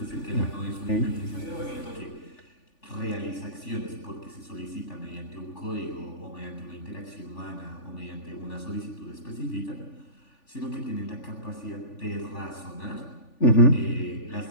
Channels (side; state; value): right; late; 3.5 ms